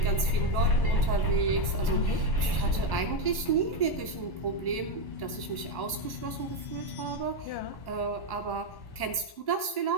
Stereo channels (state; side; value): late; right; 1.1 ms